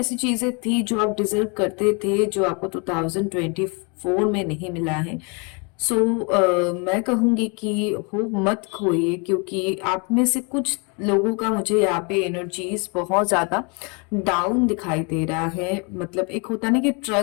चीजें थी जो आप डिजर्व करते थे, जो आपको 2024 में नहीं मिला है। मैं कहूंगी कि हो मत खोइए, क्योंकि आप में से कुछ लोगों का मुझे यहाँ पे एनर्जीज बहुत ज्यादा डाउन दिखाई दे रहा है। मतलब एक होता ना कि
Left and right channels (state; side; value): quieter; right; 33.2 dB